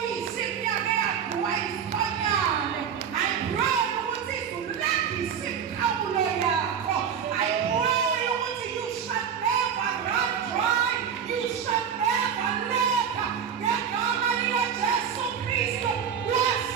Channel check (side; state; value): left; quieter; 7.7 dB